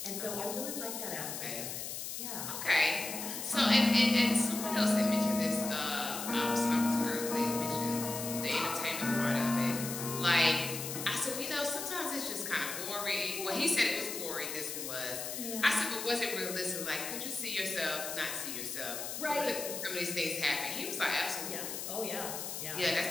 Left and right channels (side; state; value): left; noise; hiss, 6 dB below the sound